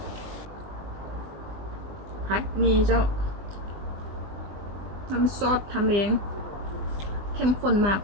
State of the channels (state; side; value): late; left; 20 ms